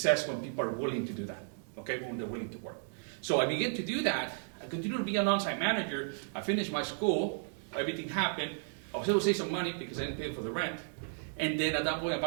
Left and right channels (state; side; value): silent; left; digital silence